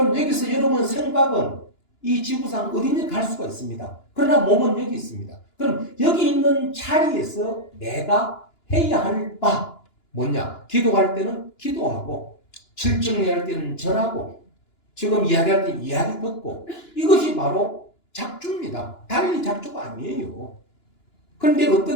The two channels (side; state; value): right; late; 2.9 ms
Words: 여기서 여러분 생각은 이 지구상 어디든 갈 수가 있습니다. 그러나 몸은 여기 있습니다. 그럼 여기 있는 자리에서 내가 해야 할 바 뭐냐? 기도할 때는 기도하고 실증할 때는 절하고 지금 이야기할 때 이야기 듣고 이것이 바로 작주입니다. 달리 작주가 아니에요. 그런데